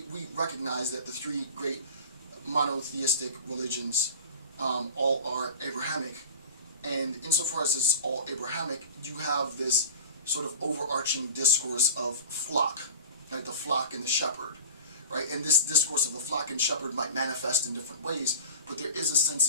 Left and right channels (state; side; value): inverted; both; correlation -0.35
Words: recognize that the three great monotheistic religions all are Abrahamic, and insofar as it's all Abrahamic, you have this sort of overarching discourse of flock, right? The flock and the shepherd, right? And this discourse of the flock and shepherd might manifest in different ways, but there is a sense